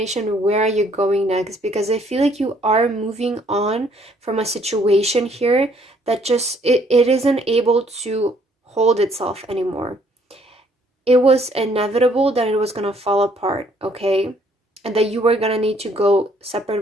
Where are you going next? Because I feel like you are moving on from a situation here that just it isn't able to hold itself anymore. It was inevitable that it was going to fall apart, okay? And that you were going to need to go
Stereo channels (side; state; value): both; normal; correlation 0.64